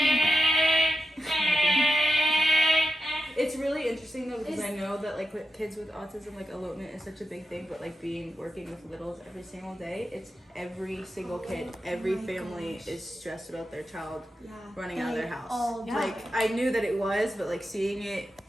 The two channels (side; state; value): both; normal; correlation 0.89